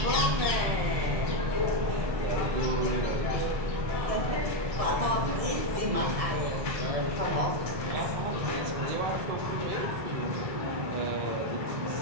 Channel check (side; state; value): left; late; 1.7 ms